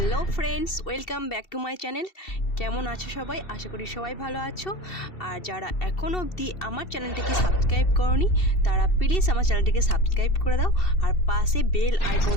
Hello friends, welcome back to my channel. কেমন আছো সবাই? আশা করি সবাই ভালো আছো। আর যারা এখনও অবধি আমার চ্যানেলটিকে সাবস্ক্রাইব করোনি তারা প্লিজ আমার চ্যানেলটিকে সাবস্ক্রাইব করে দাও আর পাশে বেল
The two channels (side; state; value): right; late; 2.7 ms